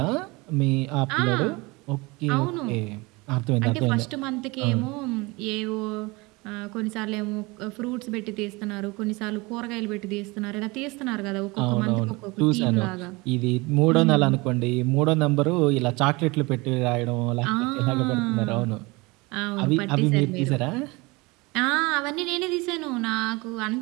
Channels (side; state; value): left; quieter; 24.6 dB